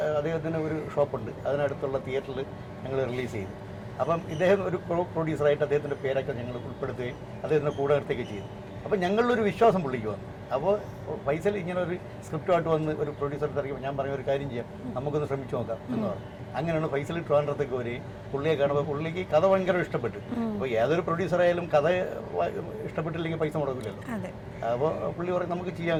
ഒരു ഷോപ്പുണ്ട്, അതിനടുത്തുള്ള തിയേറ്ററിൽ ഞങ്ങൾ റിലീസ് ചെയ്തു. അപ്പം ഇദ്ദേഹം ഒരു പ്രൊഡ്യൂസറായിട്ട് അദ്ദേഹത്തിൻ്റെ പേരൊക്കെ ഞങ്ങൾ ഉൾപ്പെടുത്തുകയും അദ്ദേഹത്തിൻ്റെ കൂടെ നിർത്തുകയൊക്കെ ചെയ്തു. അപ്പോൾ ഞങ്ങളിലൊരു വിശ്വാസം പുള്ളിക്ക് വന്നു. അപ്പോൾ ഫൈസൽ ഇങ്ങനെ ഒരു സ്ക്രിപ്റ്റുമായിട്ട് വന്ന് ഒരു പ്രൊഡ്യൂസർ തിരക്കുമ്പോൾ ഞാൻ പറഞ്ഞ ഒരു കാര്യം ചെയ്യാം, നമുക്കൊന്ന് ശ്രമിച്ചു നോക്കാം എന്ന് പറഞ്ഞു. അങ്ങനെയാണ് ഫൈസൽ ട്രിവാൻഡ്രത്തേക്ക് വരികയും പുള്ളിയെ കാണുമ്പോൾ പുള്ളിക്ക് കഥ ഭയങ്കര ഇഷ്ടപ്പെട്ടു. അപ്പോൾ ഏതൊരു പ്രൊഡ്യൂസറായാലും കഥ ഇഷ്ടപ്പെട്ടില്ലെങ്കിൽ പൈസ മുടക്കില്ലല്ലോ. അപ്പോൾ പുള്ളി പറയും നമുക്ക് ചെയ്യാൻ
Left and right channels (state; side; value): identical; both; correlation 1.00